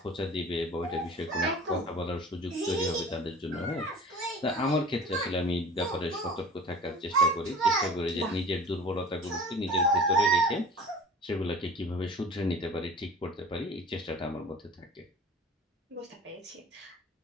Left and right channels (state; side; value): normal; both; correlation 0.41